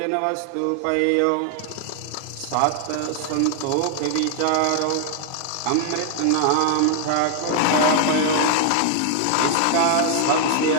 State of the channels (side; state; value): both; different; correlation 0.00